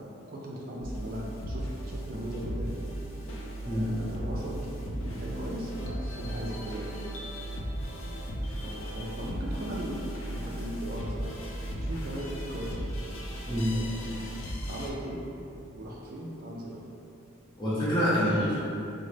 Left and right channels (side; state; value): both; normal; correlation 0.69